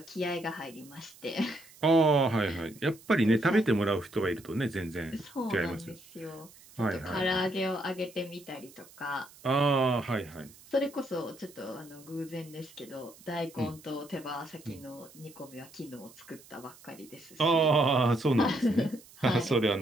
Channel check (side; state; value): right; noise; hiss, 23 dB below the sound